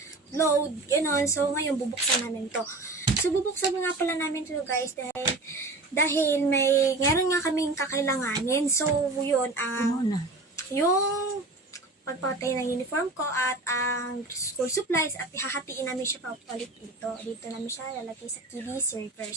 load, gano'n. So ngayon bubuksan namin to. So bubuksan nga pala namin to guys dahil may meron nga kaming kakailanganin. So yun yung pagpatay ng uniform ko at ang school supplies at ihahatiin namin siya papalit dito. Dito namin siya lalagay sa TV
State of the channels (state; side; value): quieter; left; 3.0 dB